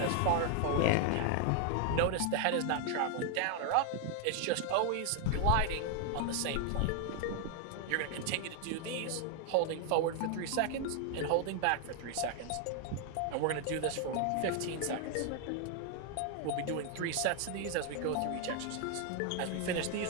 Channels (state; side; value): different; both; correlation 0.00